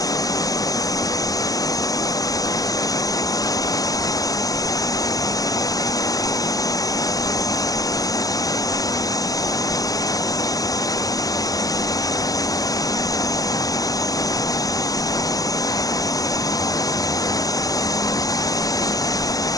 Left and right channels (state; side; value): late; right; 0.17 ms